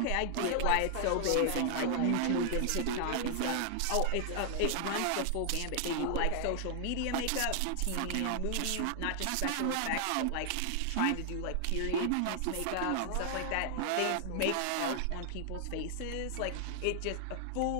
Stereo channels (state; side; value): different; both; correlation 0.00